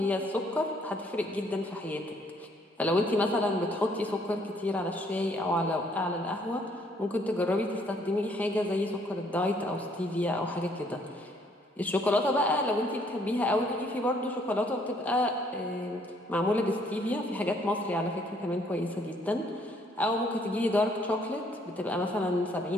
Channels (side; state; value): both; normal; correlation 0.65